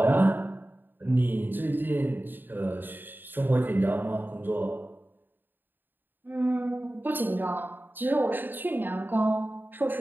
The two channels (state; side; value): late; left; 0.093 ms